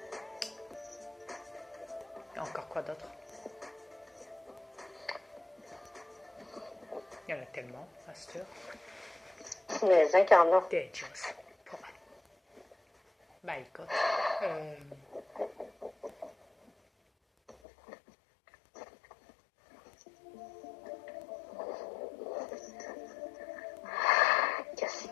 Il y a encore quoi d'autre? Il y en a tellement, à cette heure. Les incarnants. Dangerous. Bah écoute. Qu'est-ce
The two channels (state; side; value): drops out; right; at 17.6 s